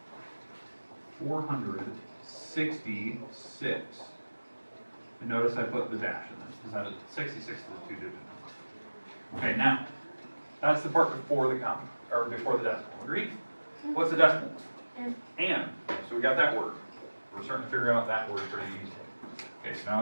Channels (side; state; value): both; inverted; correlation -1.00